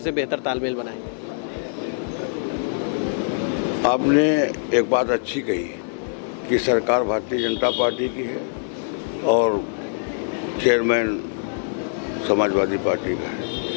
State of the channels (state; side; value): silent; right; digital silence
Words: बेहतर तालमेल बनाएं? आपने एक बात अच्छी कही कि सरकार भारतीय जनता पार्टी की है और चेयरमैन समाजवादी पार्टी का